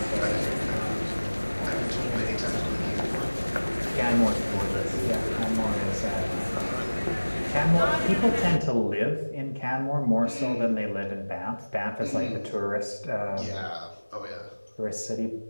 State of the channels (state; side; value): inverted; both; correlation -1.00